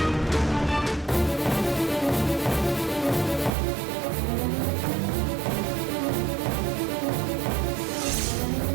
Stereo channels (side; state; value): left; drops out; at 3.5 s